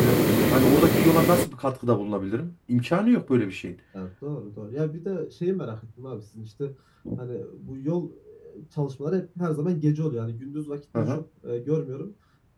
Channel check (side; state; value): both; identical; correlation 1.00